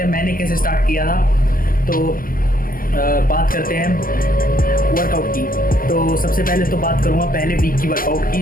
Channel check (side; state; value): right; late; 0.41 ms